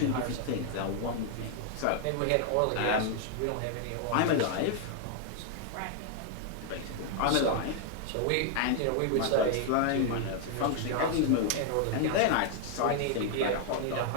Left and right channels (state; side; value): different; both; correlation 0.00